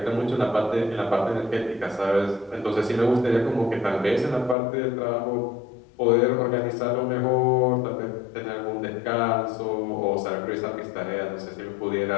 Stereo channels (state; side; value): drops out; right; at 4.5 s